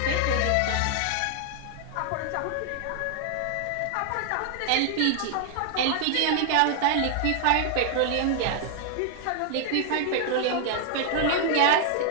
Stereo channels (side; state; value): both; different; correlation 0.00